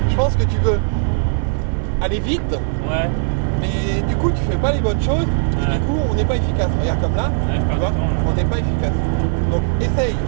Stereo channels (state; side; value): silent; left; 57 dB below the other